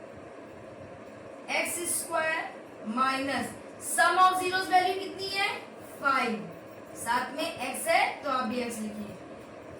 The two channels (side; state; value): both; identical; correlation 1.00